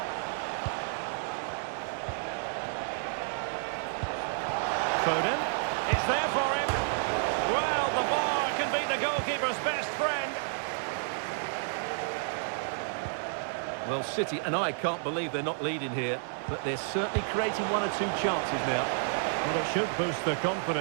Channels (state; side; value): silent; left; digital silence